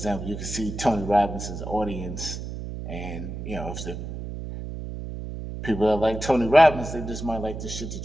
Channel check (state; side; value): noise; right; hum, 7 dB below the sound